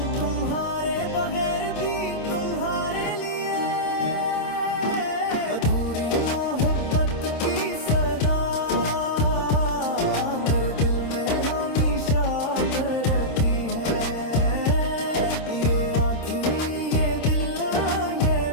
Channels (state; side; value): late; right; 26 ms